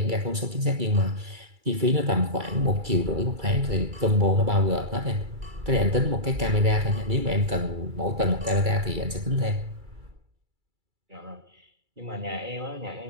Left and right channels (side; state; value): left; late; 2.3 ms